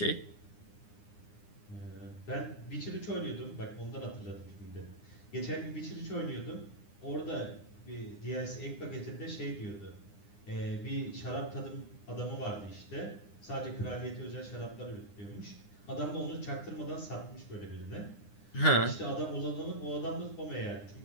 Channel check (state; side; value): late; right; 9.8 ms